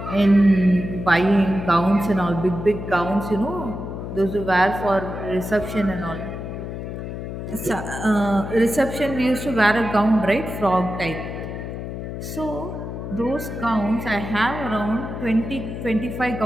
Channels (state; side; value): noise; left; hum, 7 dB below the sound